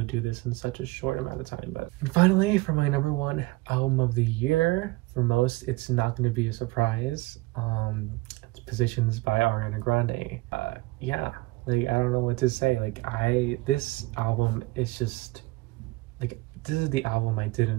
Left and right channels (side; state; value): left; quieter; 21.7 dB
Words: do this in such a short amount of time. But finally, for my number 1 album of the year, for most, it's not going to be a surprise. It's Positions by Ariana Grande. Yeah, like, I don't know what to say. Like, this album is just like, this is the album I didn't